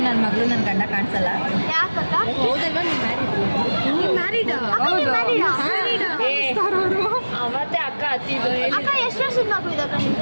ನನ್ನ ಮಗಳು ನನ್ನ ಗಂಡ ಕಾಣಿಸಲ್ಲ. ಯಾಕಕ್ಕ? ಹೌದಲ್ವಾ? ನೀವು ಮ್ಯಾರಿಡ್? ಅವತ್ತೇ ಅಕ್ಕ ಹತ್ತಿದ್ದು. ಅಕ್ಕ ಎಷ್ಟು ವರ್ಷದ ಮಗು ಇದೆ ಅಕ್ಕ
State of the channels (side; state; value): both; inverted; correlation -1.00